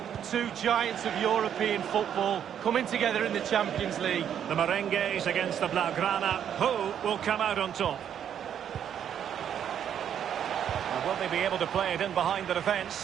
Two giants of European football coming together in the Champions League. The Merengues against the Blaugrana. Who will come out on top? And will they be able to play it in behind the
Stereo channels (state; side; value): quieter; left; 9.1 dB